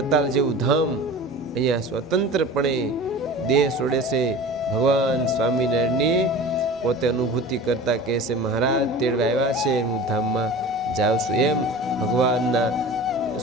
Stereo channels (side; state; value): both; normal; correlation 0.37